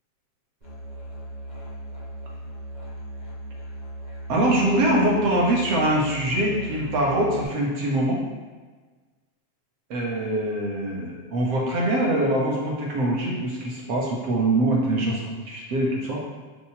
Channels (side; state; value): left; late; 7.8 ms